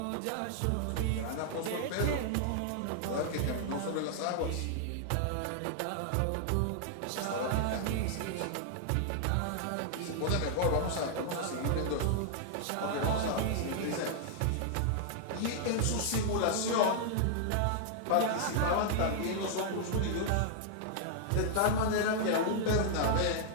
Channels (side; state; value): both; different; correlation -0.01